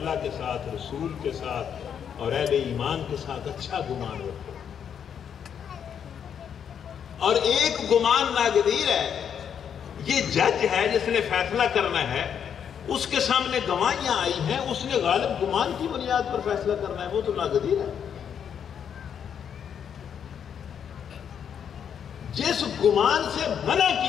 کے ساتھ، رسول کے ساتھ اور اہل ایمان کے ساتھ اچھا گمان رکھو، اور ایک گمان ناگزیر ہے، یہ جج ہے جس نے فیصلہ کرنا ہے، اس کے سامنے گواہیاں آئی ہیں، اس نے غالب گمان کی بنیاد پر فیصلہ کرنا ہے، وہ تو ناگزیر ہے۔ جس گمان سے منع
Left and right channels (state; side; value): quieter; right; 8.1 dB